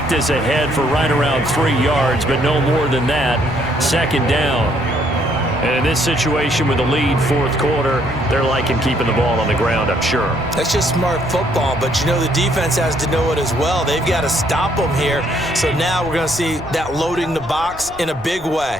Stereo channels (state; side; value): noise; right; rumble, 19 dB below the sound